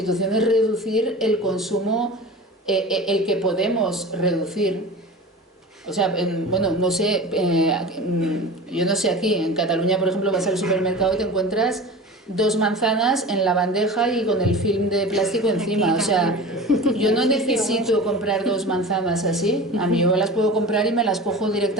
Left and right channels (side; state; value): both; normal; correlation 0.34